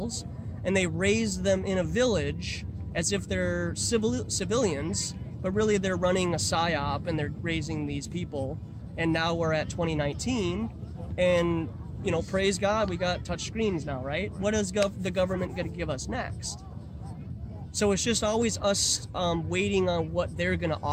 and they raised them in a village as if they're civilians, but really they're running a psyop and they're raising these people. And now we're at 2019, and, you know, praise God, we got touch screens now, right? What is the government going to give us next? So it's just always us waiting on what they're going to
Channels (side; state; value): both; identical; correlation 1.00